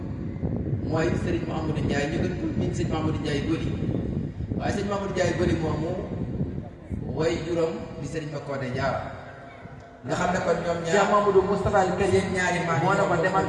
mooy sëriñ Mamadou Ndiaye ñu gën ko miin sëriñ Mamadou Ndiaye Goli waaye sëriñ Mamadou Ndiaye Goli moomu way juróom di sëriñ Makodé Diarra nga xam ne kon ñoom ñaar Cheikh Mamadou Moustapha al Karim ñaari maam moo ne ko demal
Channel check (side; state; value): both; identical; correlation 1.00